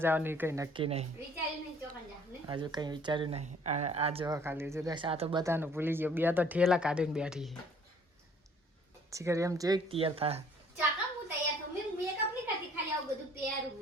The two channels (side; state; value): both; normal; correlation 0.57